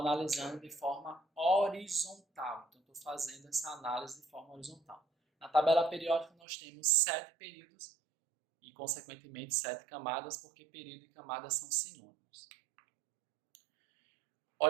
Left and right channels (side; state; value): left; drops out; at 6.3 s